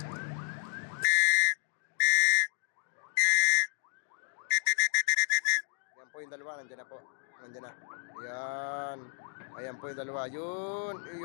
Yan po yung dalawa, nandiyan na po. Nandiyan na. Yan. Ayan po yung dalawa. Yun.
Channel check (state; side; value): silent; right; digital silence